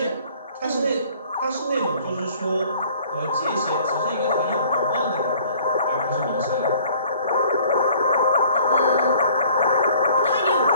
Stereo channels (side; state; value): both; inverted; correlation -0.54